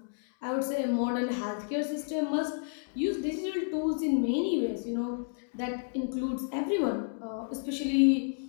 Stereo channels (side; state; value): right; silent; digital silence